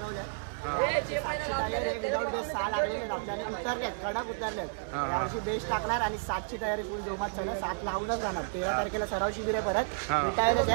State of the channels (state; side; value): silent; left; digital silence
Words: 7ची तयारी विदाउट बेस 6 लागलेले आपल्याला उतरलेत, कडक उतरलेत. यावर्षी बेस टाकणार आणि 7ची तयारी फुल जोमात चालू. 7 लावूनच राहणार. 13 तारखेला सराव शिबिर आहे परत रिटायरच